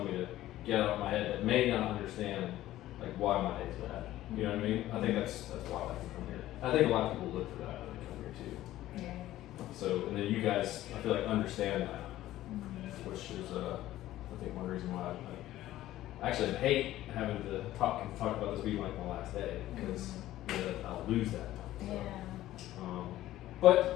me to get out of my head that may not understand like why my day's bad. You know what I mean? I think that's why I like to come here. I think a lot of people look for that when they come here too. Yeah. So, and then you guys, I feel like, understand that, which is, I think, one reason why I actually hate having to talk about this being like my last day, because I'll lose that. So,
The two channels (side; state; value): right; quieter; 14.6 dB